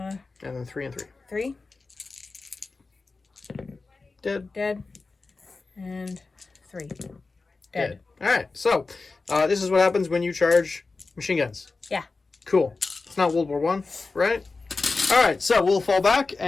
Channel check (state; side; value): quieter; right; 3.9 dB